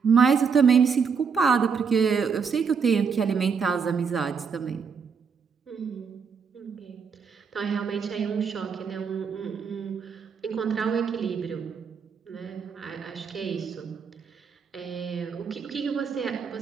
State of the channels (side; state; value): left; quieter; 6.1 dB